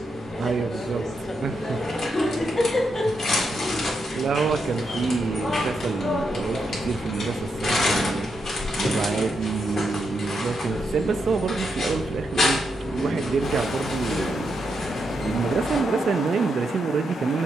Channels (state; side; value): normal; both; correlation 0.83